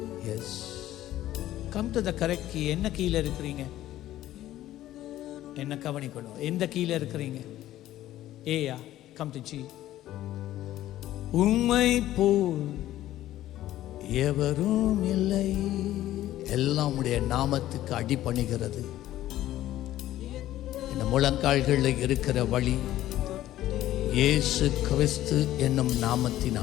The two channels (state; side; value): quieter; right; 13.9 dB